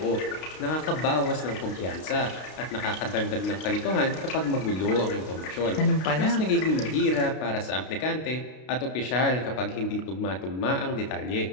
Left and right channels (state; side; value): late; right; 32 ms